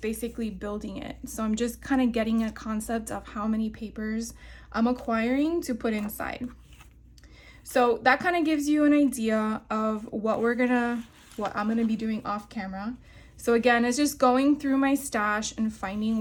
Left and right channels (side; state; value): both; identical; correlation 1.00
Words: basically building it. So I'm just kind of getting a concept of how many papers I'm acquiring to put inside. So that kind of gives you an idea of what I'm gonna be doing off camera. So again, it's just going through my stash and finding